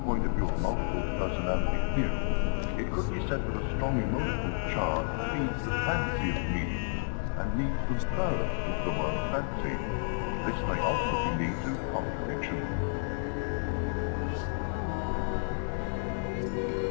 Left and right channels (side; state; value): right; silent; digital silence